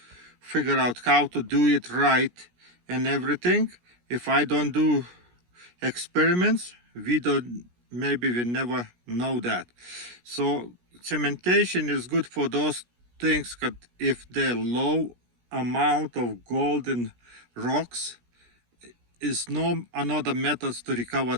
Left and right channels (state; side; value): late; left; 17 ms